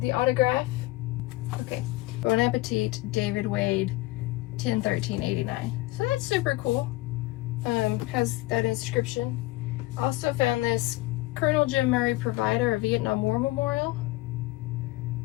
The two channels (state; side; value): quieter; right; 19.3 dB